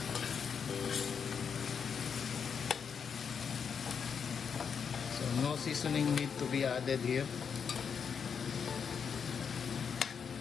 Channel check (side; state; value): right; quieter; 6.7 dB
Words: So no seasoning need to be added here.